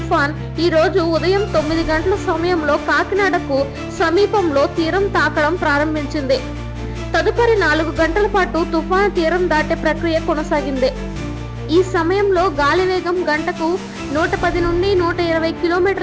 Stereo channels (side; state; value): both; identical; correlation 1.00